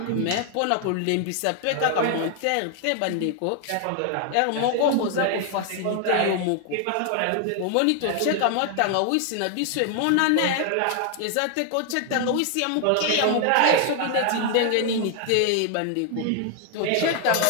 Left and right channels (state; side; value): different; both; correlation 0.00